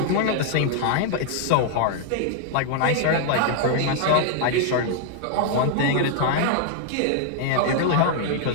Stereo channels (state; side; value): different; both; correlation -0.01